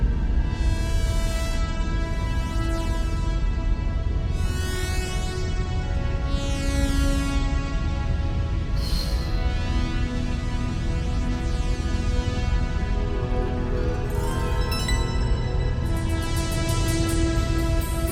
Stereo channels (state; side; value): identical; both; correlation 1.00